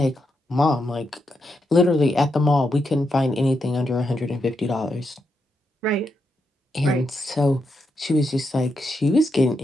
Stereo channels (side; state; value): both; normal; correlation 0.83